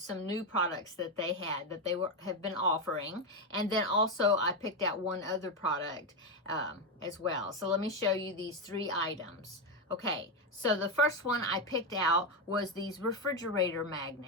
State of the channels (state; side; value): normal; both; correlation 0.09